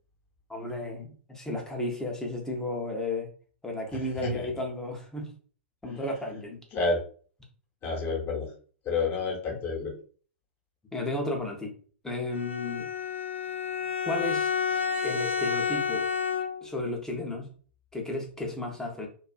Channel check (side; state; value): right; quieter; 3.4 dB